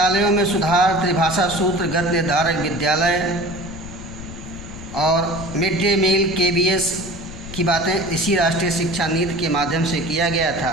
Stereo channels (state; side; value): noise; left; rumble, 13 dB below the sound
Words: में सुधार, त्रिभाषा सूत्र, गत निर्धारक विद्यालय और मिड डे मील KBS की बातें इसी राष्ट्रीय शिक्षा नीति के माध्यम से किया गया